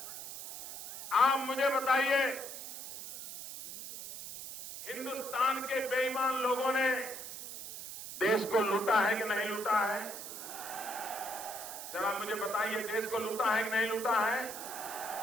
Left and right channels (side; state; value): right; noise; hiss, 9 dB below the sound